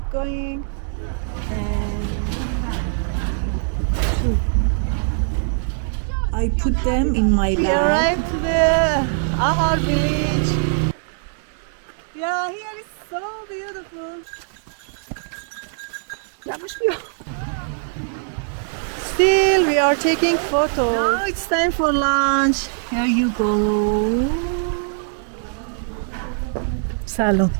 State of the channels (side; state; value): left; silent; digital silence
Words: going? And I put them in my we bag. arrived to the Ahar village. Yeah, here is so beautiful. Still, we are taking photos. Now it's time for lunch. Here you go. Salon.